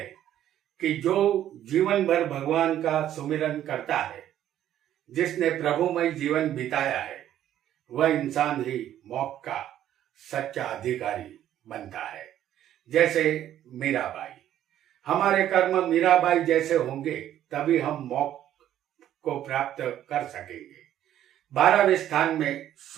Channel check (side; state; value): left; quieter; 11.6 dB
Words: कि जो जीवन भर भगवान का सुमिरन करता है, जिसने प्रभुमय जीवन बिताया है, वह इंसान ही मोक्ष का सच्चा अधिकारी बनता है। जैसे मीराबाई, हमारे कर्म मीराबाई जैसे होंगे तभी हम मोक्ष को प्राप्त कर सकेंगे। 12वें स्थान में